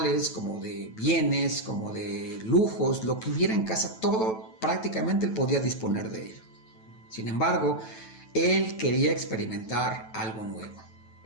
como de bienes, como de lujos, lo que hubiera en casa, todo prácticamente él podía disponer de ello. Sin embargo, él quería experimentar algo nuevo.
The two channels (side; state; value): right; late; 9.1 ms